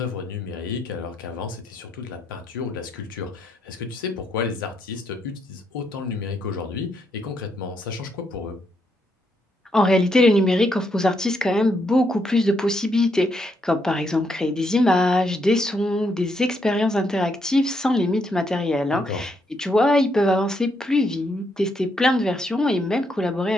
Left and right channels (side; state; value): both; normal; correlation 0.77